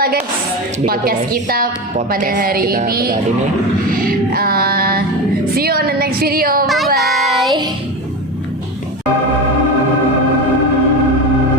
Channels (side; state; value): both; normal; correlation 0.22